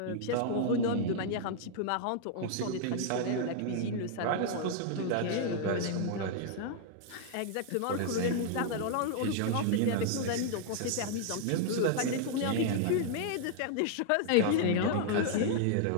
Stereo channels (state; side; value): different; both; correlation 0.00